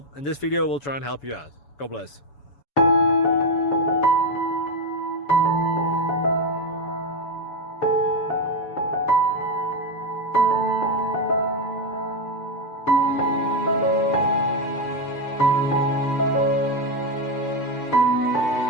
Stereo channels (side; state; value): right; late; 7.0 ms